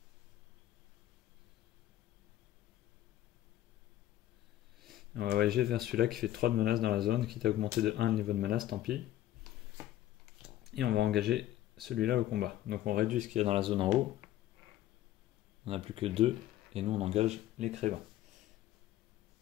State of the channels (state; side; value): quieter; right; 13.5 dB